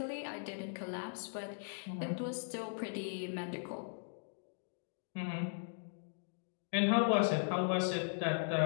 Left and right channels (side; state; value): right; silent; digital silence